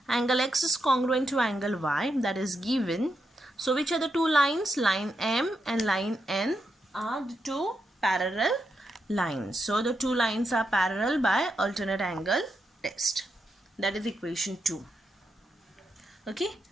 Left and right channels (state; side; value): normal; both; correlation 0.84